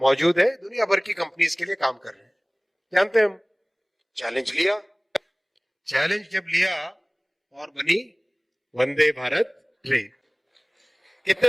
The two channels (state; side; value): identical; both; correlation 1.00